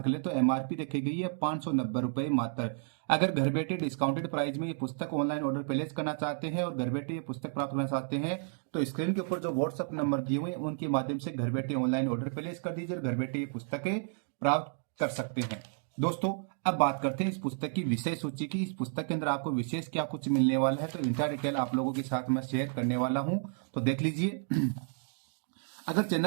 करें तो एमआरपी रखी गई है 590 रुपए मात्र। अगर घर बैठे डिस्काउंटेड प्राइस में ये पुस्तक ऑनलाइन ऑर्डर प्लेस करना चाहते हैं और घर बैठे ये पुस्तक प्राप्त करना चाहते हैं तो स्क्रीन के ऊपर जो व्हाट्सएप नंबर दिए हुए हैं उनके माध्यम से घर बैठे ऑनलाइन ऑर्डर प्लेस कर दीजिए और घर बैठे ये पुस्तकें प्राप्त कर सकते हैं। दोस्तों, अब बात करते हैं इस पुस्तक की विषय सूची की। इस पुस्तक के अंदर आपको विशेष क्या कुछ मिलने वाला है तो इंटा डिटेल आप लोगों के साथ मैं शेयर करने वाला हूं, तो देख लीजिए। अगर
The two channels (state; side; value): silent; left; 56 dB below the other